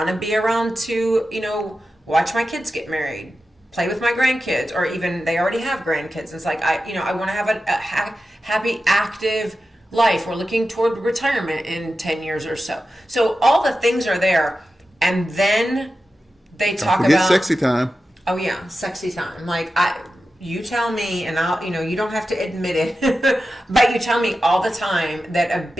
to be around to, watch my kids get married, play with my grandkids, or even they already have grandkids. It's like, I want to have a happy, active life. We're looking toward retirement in 10 years or so. So all the things are there. And then they talk about sexy time. Oh yeah. Sexy time. Like you tell me, and I'll, you don't have to admit it, but you tell me all the time that a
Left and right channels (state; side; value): normal; both; correlation 0.92